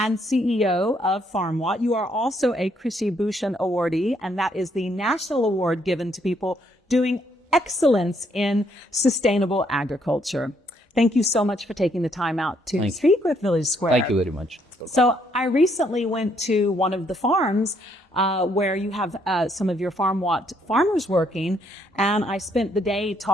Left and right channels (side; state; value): both; normal; correlation 0.71